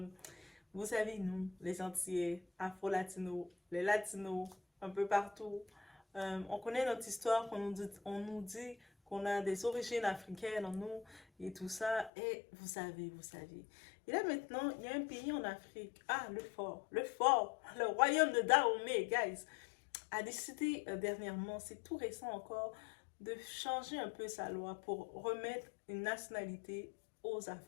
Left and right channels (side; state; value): right; drops out; at 12.1 s